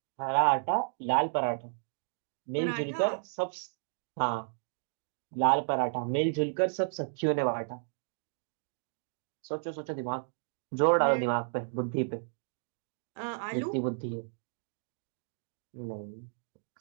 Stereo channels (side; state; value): left; silent; digital silence